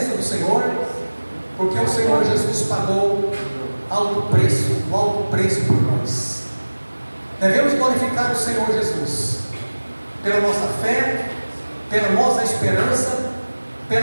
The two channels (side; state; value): both; inverted; correlation -1.00